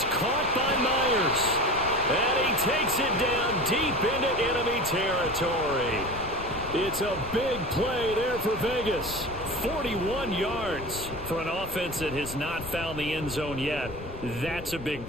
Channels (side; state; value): left; noise; rumble, 12 dB below the sound